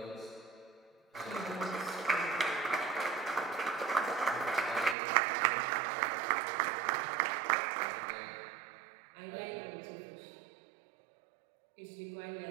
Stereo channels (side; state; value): left; drops out; at 5.0 s